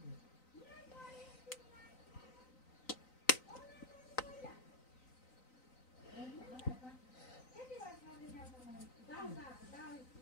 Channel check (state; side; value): late; right; 3.9 ms